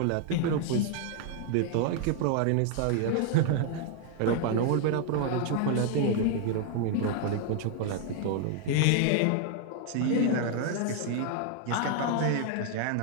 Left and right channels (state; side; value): different; both; correlation 0.00